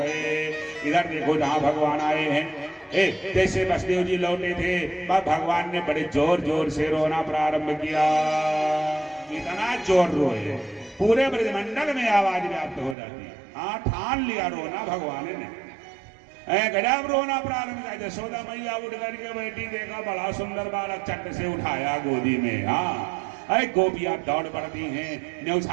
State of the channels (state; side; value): drops out; left; at 13.0 s